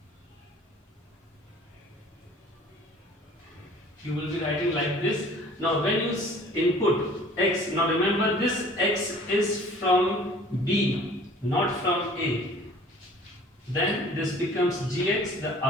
you will be writing like this. Now when you input x, now remember this x is from B, not from A. Then this becomes gx, the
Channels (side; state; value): both; normal; correlation 0.49